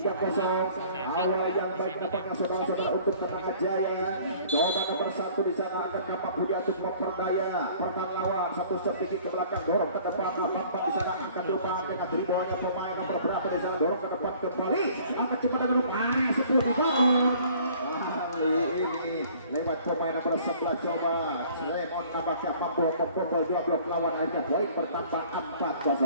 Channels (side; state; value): both; inverted; correlation -0.53